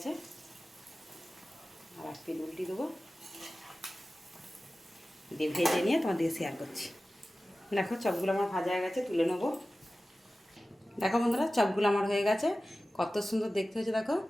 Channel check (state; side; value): normal; both; correlation 0.96